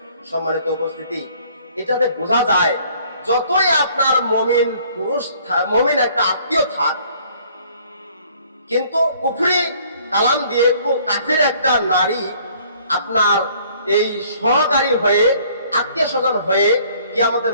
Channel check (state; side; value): inverted; both; correlation -0.58